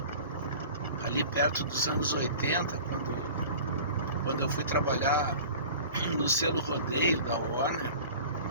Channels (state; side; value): inverted; both; correlation -0.41